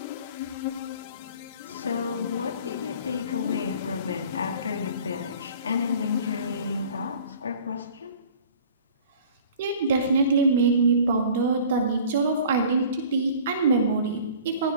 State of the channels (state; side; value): inverted; both; correlation -0.47